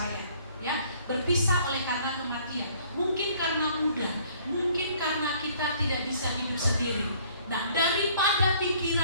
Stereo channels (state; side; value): inverted; both; correlation -0.58